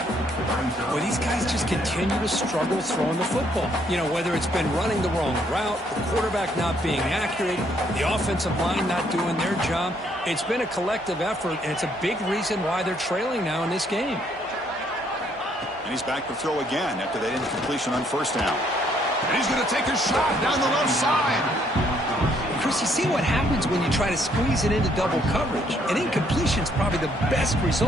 Well, these guys just continue to struggle throwing the football. You know, whether it's been running the wrong route, the quarterback not being accurate, the offensive line not doing their job. It's been a collective effort, and it's a big reason why they're trailing now in this game. And he's back to throw again after that incompletion on first down. And he's going to take a shot down the left side. Chris, you see what happens when you try to squeeze it into double coverage. An incompletion is probably the best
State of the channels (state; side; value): normal; both; correlation 0.68